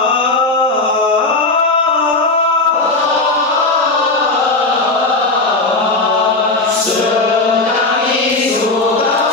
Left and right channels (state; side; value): quieter; right; 3.2 dB